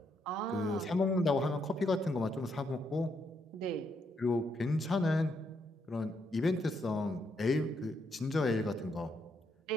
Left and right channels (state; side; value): normal; both; correlation 0.77